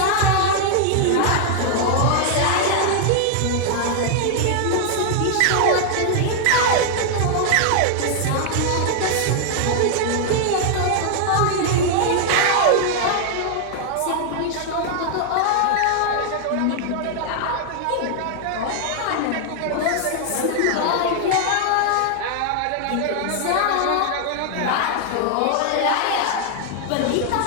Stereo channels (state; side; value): different; both; correlation 0.00